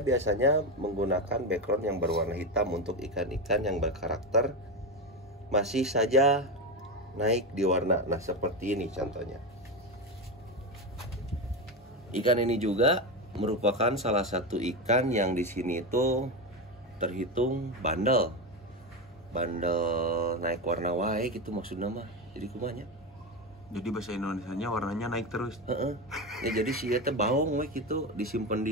menggunakan background yang berwarna hitam untuk ikan-ikan yang berkarakter masih saja naik di warna. Nah, seperti ini contohnya. Ikan ini juga merupakan salah satu ikan yang di sini itu terhitung bandel naik warna wae gitu maksudnya mah. Jadi kumanya. Jadi bahasa Indonesianya warnanya naik terus. Ya jadi sih ya baung we gitu, disimpan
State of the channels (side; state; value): both; normal; correlation 0.15